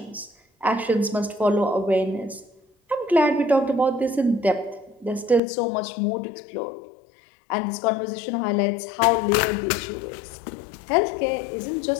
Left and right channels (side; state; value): right; drops out; at 5.4 s